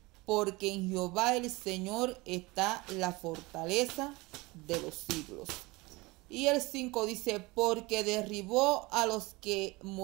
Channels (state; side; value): quieter; left; 23.0 dB